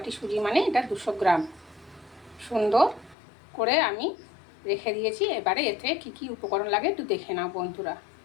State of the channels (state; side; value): drops out; right; at 3.2 s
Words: সুজি মানে এটা 200 গ্রাম। সুন্দর করে আমি রেখে দিয়েছি। এবারে এতে কি কি উপকরণ লাগে একটু দেখে নাও বন্ধুরা।